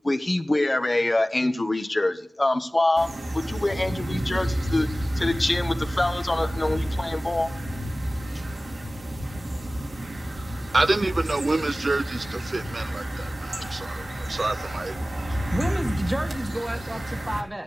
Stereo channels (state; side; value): normal; both; correlation 0.97